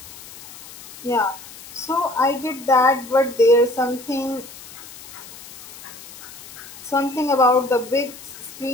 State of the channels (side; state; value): left; noise; hiss, 16 dB below the sound